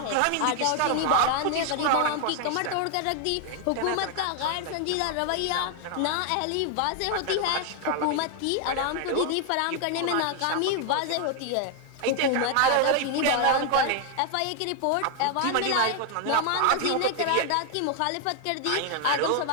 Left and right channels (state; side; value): different; both; correlation 0.00